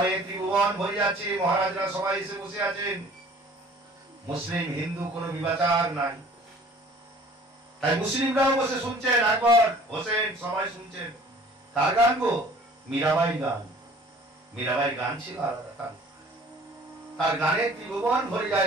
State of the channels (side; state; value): both; normal; correlation 0.51